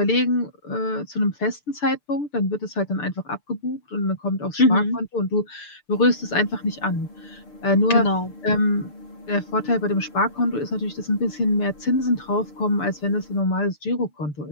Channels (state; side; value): late; right; 6.8 ms